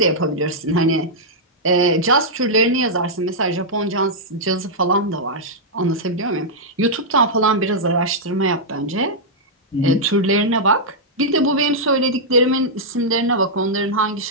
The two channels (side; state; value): both; normal; correlation -0.08